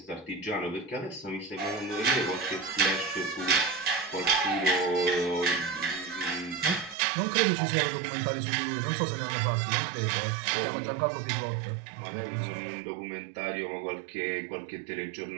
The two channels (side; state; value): left; drops out; at 7.0 s